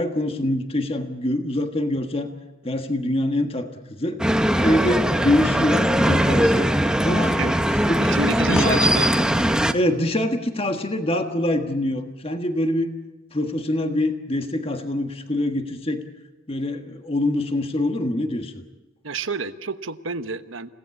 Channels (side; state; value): both; normal; correlation 0.78